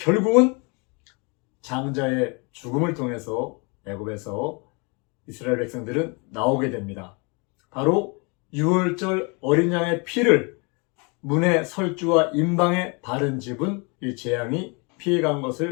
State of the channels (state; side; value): quieter; right; 31.6 dB